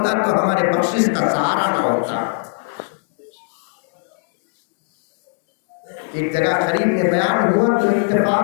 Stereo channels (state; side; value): silent; right; digital silence